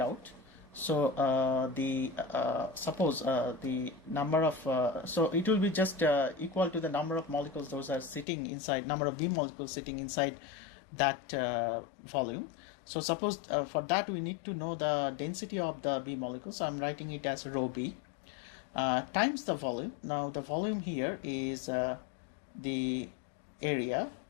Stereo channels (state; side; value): drops out; right; at 8.2 s